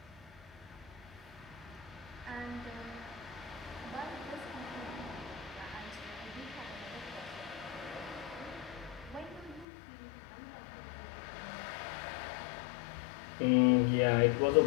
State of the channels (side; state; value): right; drops out; at 9.7 s